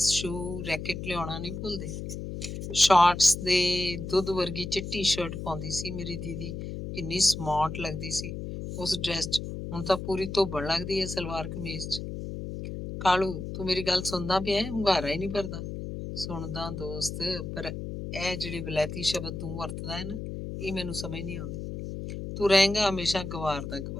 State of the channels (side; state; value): left; noise; hum, 7 dB below the sound